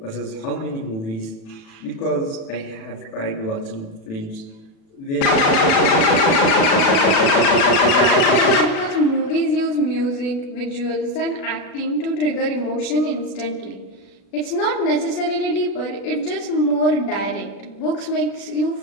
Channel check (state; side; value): late; right; 37 ms